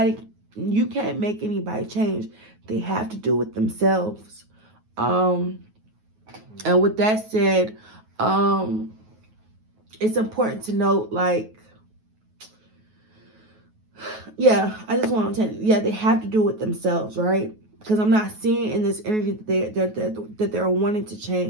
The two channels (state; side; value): late; left; 9.3 ms